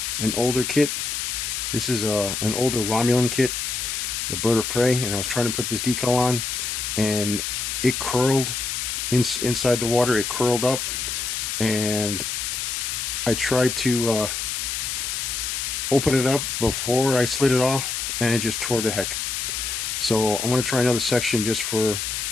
an older kit. This is an older Romulan kit, the Bird of Prey, and I was trying to put this decal on, and it curled inside the water. It curled up, and I tried to open it up before I slid it off, and it just tore to heck. So I'm going to try another section just for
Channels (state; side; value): noise; left; hiss, 2 dB below the sound